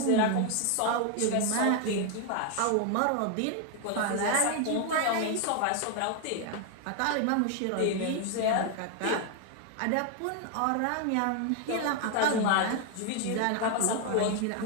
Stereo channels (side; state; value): both; different; correlation 0.00